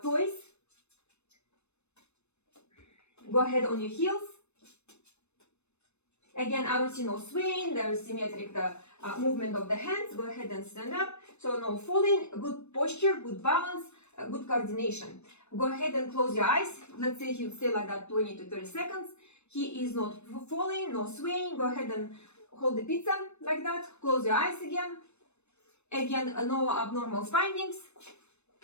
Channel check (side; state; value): right; late; 0.81 ms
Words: toes. Go ahead on your heels. Again, I don't see no swaying. There is symmetric the movement of the hands. Go ahead and stand up. So no falling, good posture, good balance, good coordination. Go ahead and close your eyes. Let's say he'll stay like that 20 to 30 seconds. He is not falling, no swaying. Go ahead and hold the pizza like that. Close your eyes again. Again, no abnormal findings.